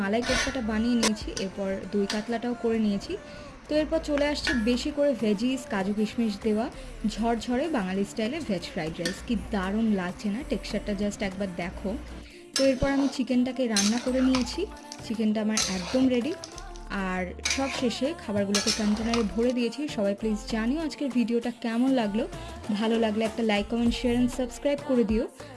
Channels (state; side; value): identical; both; correlation 1.00